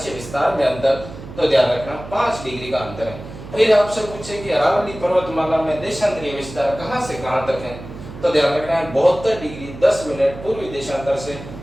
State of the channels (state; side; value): noise; right; hum, 13 dB below the sound